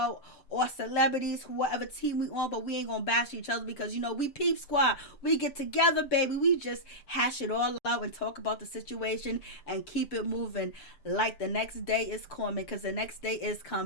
our celebrities, whatever team we on, but we ain't gonna bash each other because we Peep Squad. We get together, baby. We just hash it all out and talk about the situation and keep it moving like the next day is coming, because the next day is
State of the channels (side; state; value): right; late; 6.9 ms